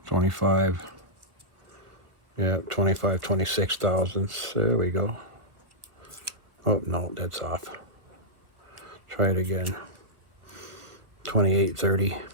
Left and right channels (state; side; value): late; left; 1.4 ms